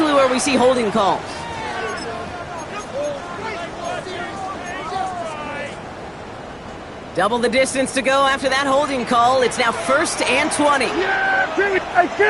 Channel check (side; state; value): both; identical; correlation 1.00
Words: where we see holding calls. Double the distance to go after that holding call. It's now 1st and 20.